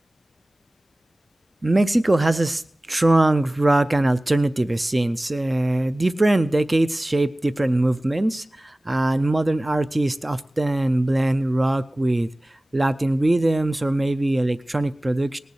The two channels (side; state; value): both; normal; correlation 0.98